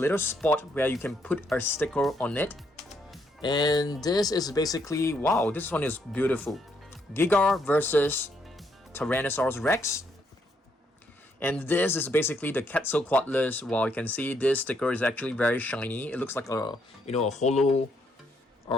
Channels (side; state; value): both; normal; correlation 0.74